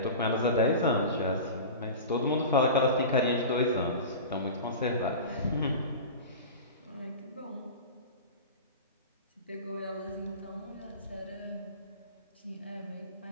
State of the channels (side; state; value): both; inverted; correlation -0.31